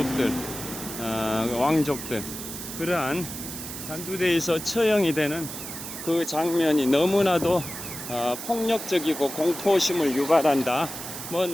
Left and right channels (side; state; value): right; noise; hiss, 9 dB below the sound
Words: 왕족들, 그러한 단두대에서 처형이 되는 그 장면이 너무나도 폭력적이고 공포심을 유발한다. 뭐